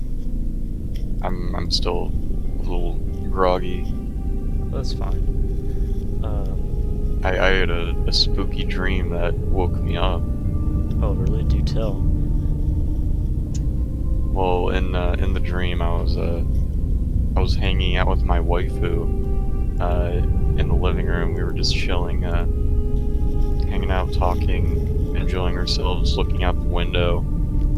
I'm still a little groggy. That's fine. I had a spooky dream that woke me up. Oh, really? Do tell. Well, in the dream, I was hanging out with my waifu in the living room. We were just chilling, hanging hanging out, talking, enjoying ourselves, looking out the window,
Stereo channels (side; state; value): both; identical; correlation 1.00